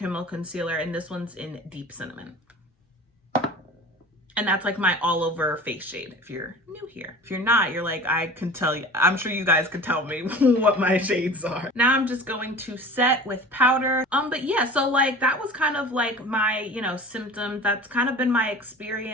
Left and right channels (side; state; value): both; normal; correlation 0.39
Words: concealer, and this one's in Deep Cinnamon. And that's like my all over face shade if you're new here. If you're not, you're like, I can tell you, I'm sure you guys could tell me what my shades are. Now I'm just going to set with powder. But yeah, so like that was kind of like my, you know, symptoms. That's kind of been my